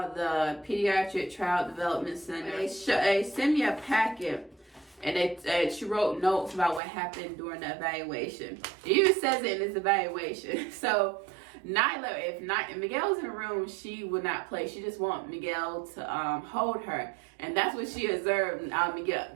the Pediatric Child Development Center. They sent me a packet, and she wrote notes about what happened during the evaluation. It even says it in this evaluation. So Nyla, if Miguel's in the room, she would not play. She just want Miguel to hold her, and that's what she observed.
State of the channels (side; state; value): left; drops out; at 6.8 s